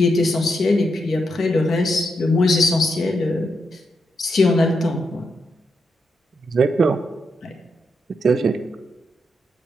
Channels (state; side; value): normal; both; correlation 0.83